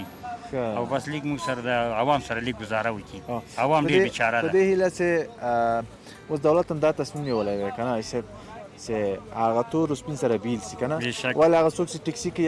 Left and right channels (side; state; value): both; identical; correlation 1.00